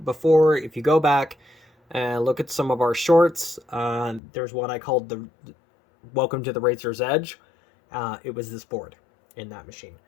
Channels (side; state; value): right; drops out; at 4.2 s